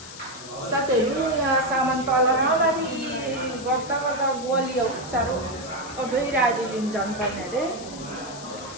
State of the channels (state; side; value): noise; left; hiss, 14 dB below the sound